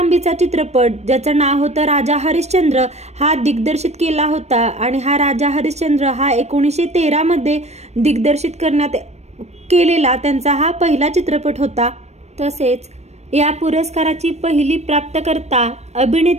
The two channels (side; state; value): left; late; 0.32 ms